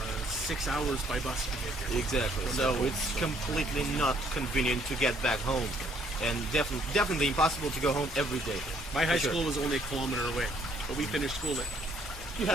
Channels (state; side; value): normal; both; correlation 0.65